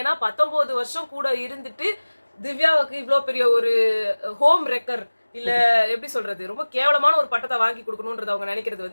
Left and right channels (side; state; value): both; inverted; correlation -1.00